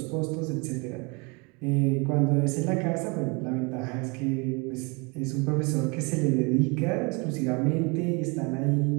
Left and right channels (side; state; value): left; quieter; 29.8 dB